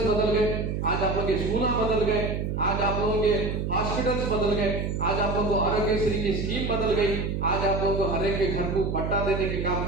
बदल गए, आज आप लोगों के स्कूल बदल गए, आज आप लोगों के हॉस्पिटल्स बदल गए, आज आप लोगों को आरोग्यश्री की स्कीम बदल गई, आज आप लोगों को हर एक के घर को पट्टा देने के काम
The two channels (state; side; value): noise; right; hum, 2 dB below the sound